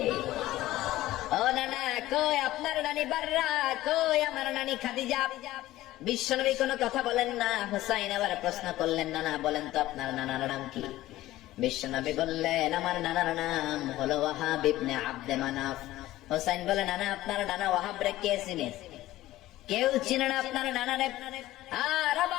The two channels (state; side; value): quieter; right; 15.9 dB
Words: ও নানা, কই আপনার নানি বাররা, কই আমার নানি খাদিজা? বিশ্বনবী কোনো কথা বলেন না। হুসাইন আবার প্রশ্ন করলেন, নানা বলেন তো আপনার নানার নাম কি? বিশ্বনবী বললেন, আমার নানার নাম হলো ওয়াহাব ইবনে আব্দে মানাফ। হুসাইন বলে, নানা আপনার নানা ওয়াহাব রে কে চিনে? কেউ চিনে না আপনার নানারে। আর